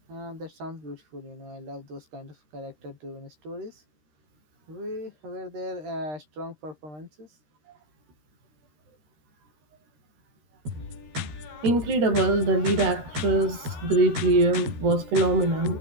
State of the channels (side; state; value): left; late; 13 ms